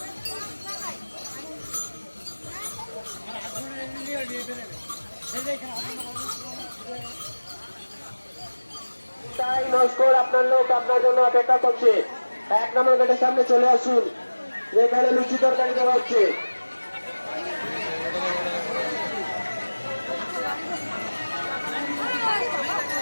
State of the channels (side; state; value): both; inverted; correlation -1.00